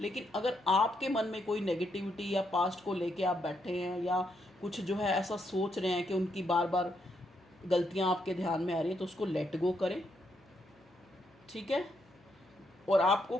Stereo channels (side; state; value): left; noise; hum, 29 dB below the sound